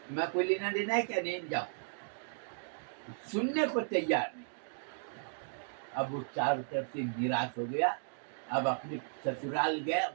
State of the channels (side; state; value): left; silent; digital silence